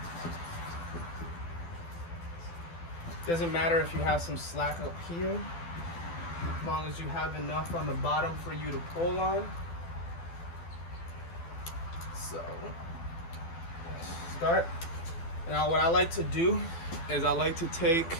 Doesn't matter if you have some slack up here, as long as you have enough on the bottom for you to pull on. So, start. Now what I like to do is I like to take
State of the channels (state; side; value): late; right; 12 ms